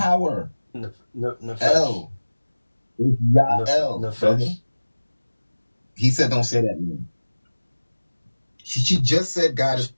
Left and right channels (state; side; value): inverted; both; correlation -1.00